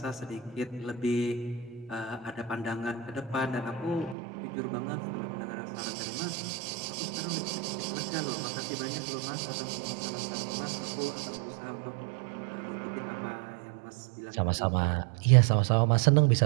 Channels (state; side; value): drops out; left; at 4.2 s